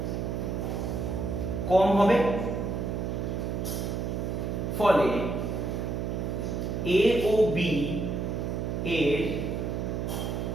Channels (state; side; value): noise; right; hum, 2 dB below the sound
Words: কম হবে, ফলে এ ও বি এর